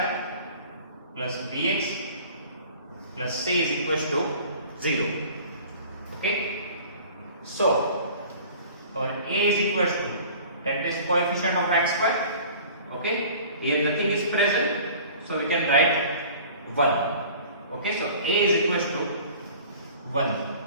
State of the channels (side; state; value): both; inverted; correlation -0.45